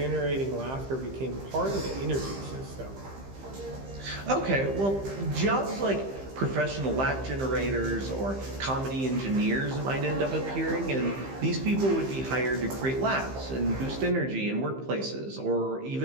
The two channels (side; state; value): left; late; 15 ms